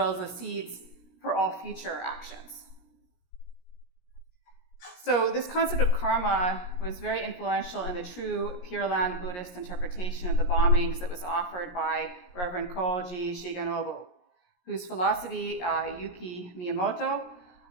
as the seeds for all future actions. So this concept of karma was very influential in the true Pure Land Buddhist interpretation of the bombings that was offered by Reverend Koji Shigenobu, whose philosophy Yuki Miyamoto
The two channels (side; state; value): right; late; 17 ms